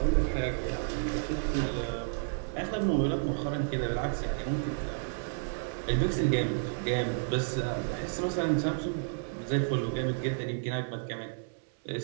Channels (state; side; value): silent; left; 57 dB below the other